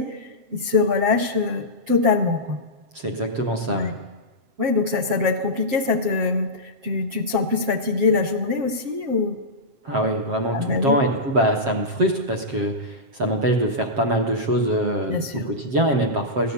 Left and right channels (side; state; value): left; late; 7.2 ms